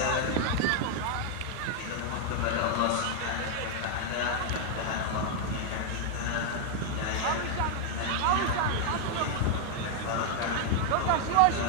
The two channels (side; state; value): both; different; correlation 0.00